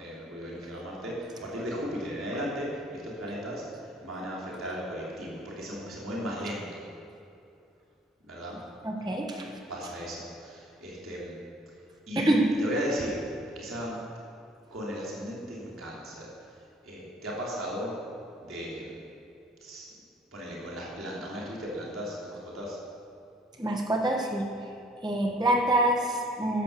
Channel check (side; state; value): both; normal; correlation 0.56